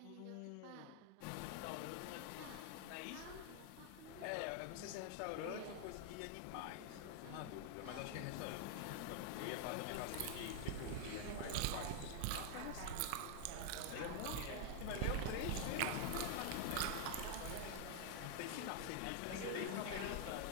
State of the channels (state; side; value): different; both; correlation 0.00